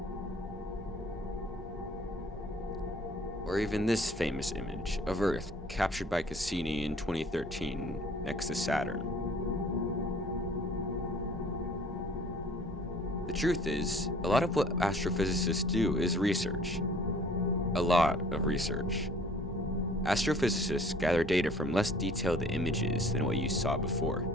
Or even this famous image of Earth captured by Cassini in 2013 next to Saturn. The truth is, a lot of what astrophysicists do is research. A lot of research. Astrophysicists gather data from less detailed images than what you saw before.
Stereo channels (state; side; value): normal; both; correlation 0.53